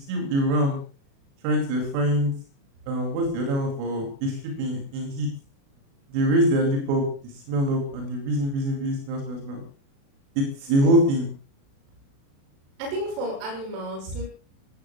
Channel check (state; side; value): late; left; 36 ms